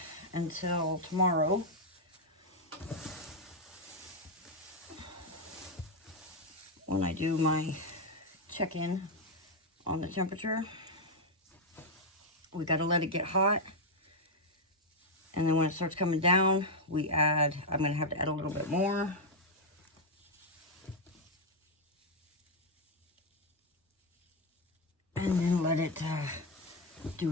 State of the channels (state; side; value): normal; both; correlation 0.01